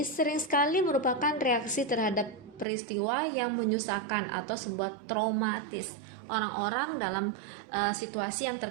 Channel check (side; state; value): left; drops out; at 2.7 s